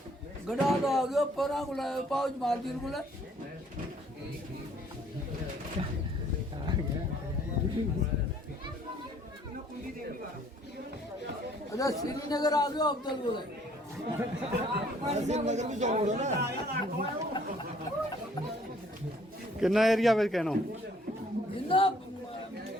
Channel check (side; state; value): both; normal; correlation 0.60